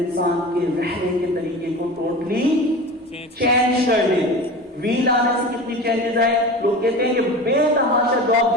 کے رہنے کے طریقے کو ٹوٹلی چینج کر دے. ویل آنے سے کتنی چینجز آئے. لوگ کہتے ہیں کہ بے تحاشا جاب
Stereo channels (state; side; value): normal; both; correlation 0.33